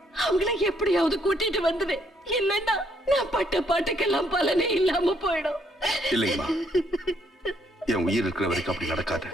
அவங்கள எப்படியாவது கூட்டிட்டு வந்துவேன். இல்லன்னா நான் பட்ட பாட்டுக்கெல்லாம் பலனே இல்லாம போயிடும். இல்லைங்கம்மா, என் உயிர் இருக்கிற வரைக்கும் அப்படி நடக்காது.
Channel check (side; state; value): both; normal; correlation 0.70